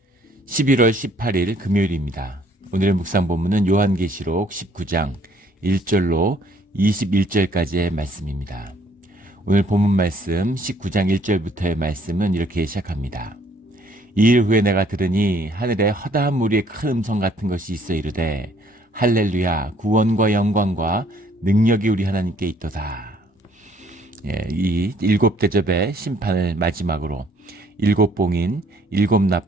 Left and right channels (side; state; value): both; normal; correlation 0.62